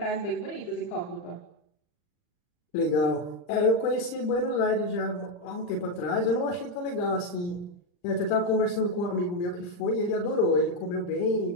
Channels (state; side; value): late; right; 39 ms